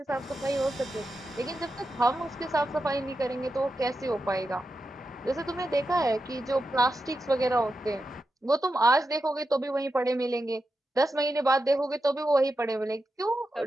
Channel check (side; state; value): both; normal; correlation 0.89